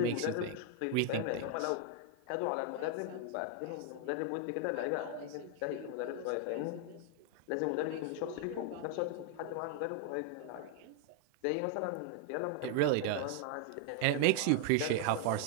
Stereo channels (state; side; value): different; both; correlation 0.00